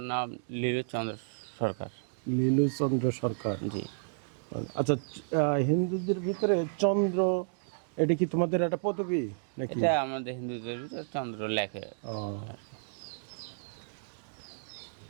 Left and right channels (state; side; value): silent; left; digital silence